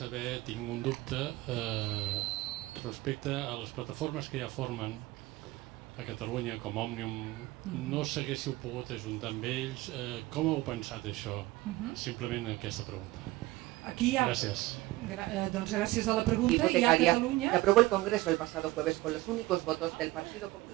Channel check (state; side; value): quieter; left; 19.0 dB